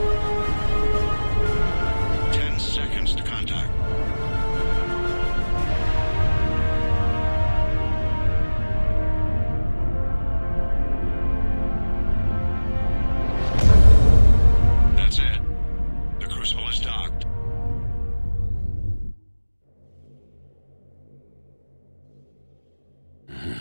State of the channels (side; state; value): both; inverted; correlation -1.00